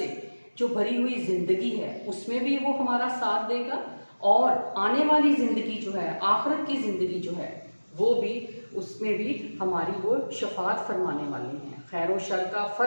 जो भरी हुई ज़िंदगी है उसमें भी वो हमारा साथ देगा और आने वाली ज़िंदगी जो है, आखिरत की ज़िंदगी जो है वो भी, उसमें भी हमारी वो शफात फरमाने वाले हैं, खैर और शर का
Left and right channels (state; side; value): inverted; both; correlation -1.00